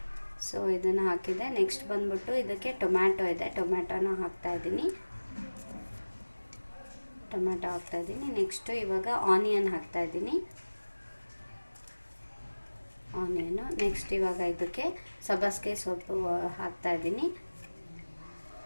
ಸೊ ಇದನ್ನು ಹಾಕಿದೆ. ನೆಕ್ಸ್ಟ್ ಬಂದ್ಬಿಟ್ಟು ಇದಕ್ಕೆ ಟೊಮ್ಯಾಟೊ ಇದೆ, ಟೊಮ್ಯಾಟೊನ ಹಾಕ್ತಾ ಇದ್ದೀನಿ. ನೆಕ್ಸ್ಟು ಇವಾಗ ಆನಿಯನ್ ಹಾಕ್ತಾ ಇದ್ದೀನಿ, ಆನಿಯನು. ನೆಕ್ಸ್ಟ್ ಇವಾಗ ಇದಕ್ಕೆ ಸಬ್ಬಸಿಗೆ ಸೊಪ್ಪು ಹಾಕ್ತಾ ಇದ್ದೀನಿ.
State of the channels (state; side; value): inverted; both; correlation -1.00